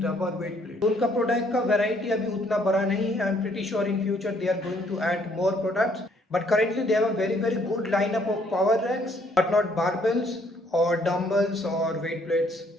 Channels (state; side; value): normal; both; correlation 0.65